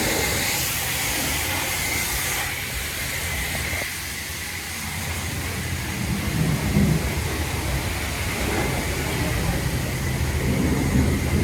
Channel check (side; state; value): both; identical; correlation 1.00